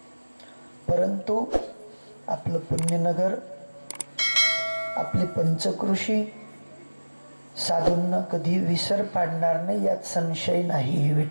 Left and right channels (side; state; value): both; inverted; correlation -1.00